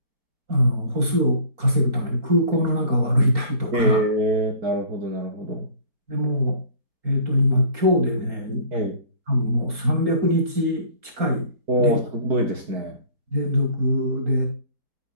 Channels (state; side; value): late; left; 4.4 ms